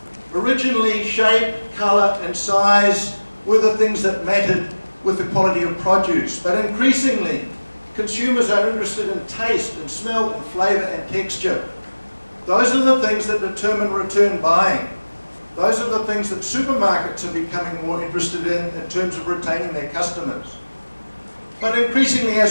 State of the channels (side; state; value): both; inverted; correlation -1.00